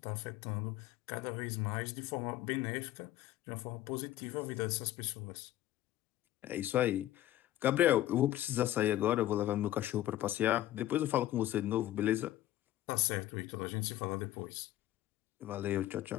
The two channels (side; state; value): right; quieter; 14.0 dB